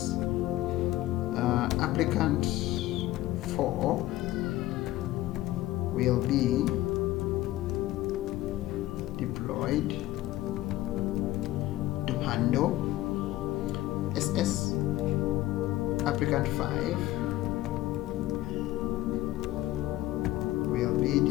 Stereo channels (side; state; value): right; quieter; 16.0 dB